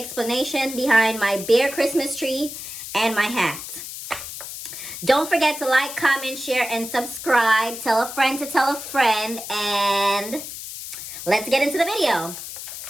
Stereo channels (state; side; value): noise; left; hiss, 9 dB below the sound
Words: behind my bear Christmas tree and my hat. Don't forget to like, comment, share, and subscribe. Tell a friend to tell a friend. And let's get into the video.